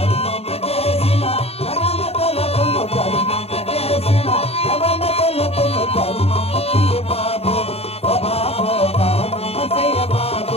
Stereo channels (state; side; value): late; right; 0.29 ms